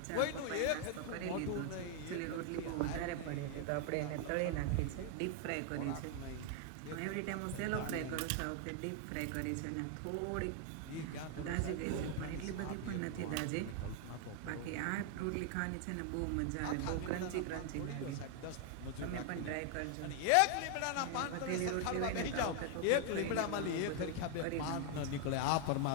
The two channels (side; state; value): both; different; correlation 0.00